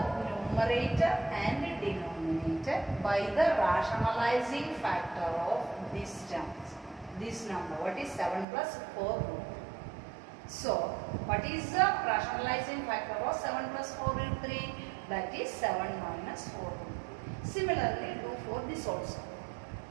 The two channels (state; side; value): drops out; left; at 8.5 s